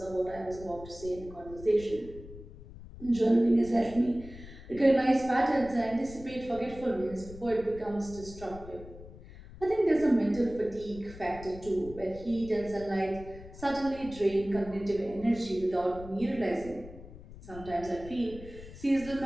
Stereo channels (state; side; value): noise; left; rumble, 16 dB below the sound